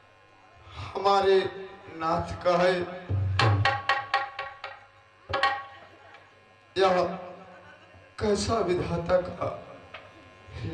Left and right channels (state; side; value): identical; both; correlation 1.00